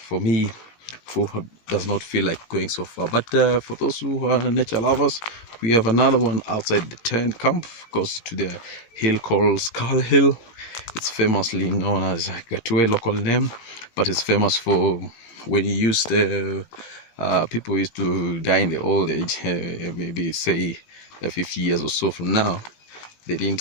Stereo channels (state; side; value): late; right; 18 ms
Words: me who does not feel like going so far. But for those who are nature lovers, we have another one outside the tent camp, goes to the hill called Skull Hill. It's famously known as Gatue local name, but it's famous for when you use the people used to die in the old age, maybe say 50 years or so from now. They